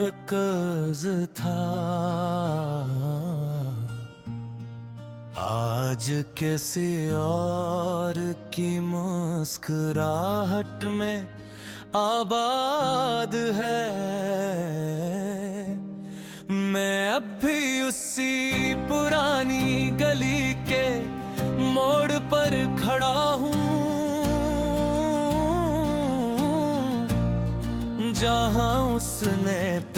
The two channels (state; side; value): identical; both; correlation 1.00